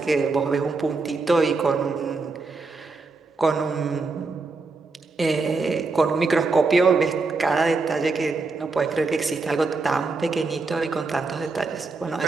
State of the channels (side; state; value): left; quieter; 3.9 dB